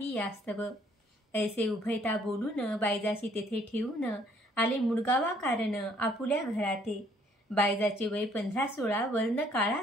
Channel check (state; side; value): normal; both; correlation 0.63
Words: यास्तव। ऐसे उभयता बोलून, बायजाशी तेथे ठेवून, आले मुडगावा कारण आपुल्या घराते। बायजाचे वय 15-16, वर्ण काळा